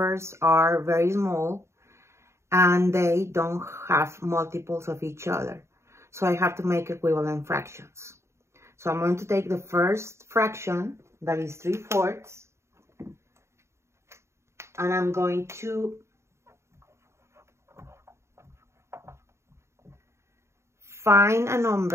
are very small and they don't have multiples of each other. So I have to make equivalent fractions. So I'm going to take the first fraction, that is 3/4, and I'm going to find a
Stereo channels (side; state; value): left; late; 0.13 ms